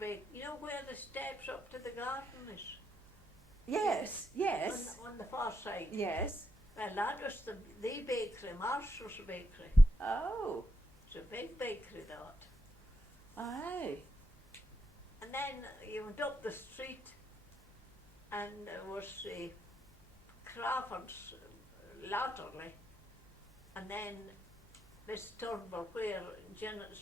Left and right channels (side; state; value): both; normal; correlation 0.81